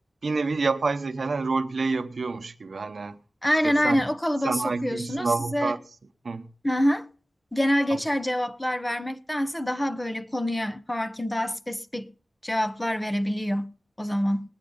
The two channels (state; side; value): normal; both; correlation 0.97